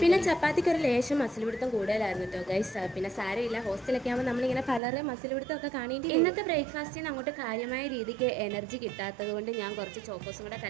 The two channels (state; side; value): drops out; left; at 4.8 s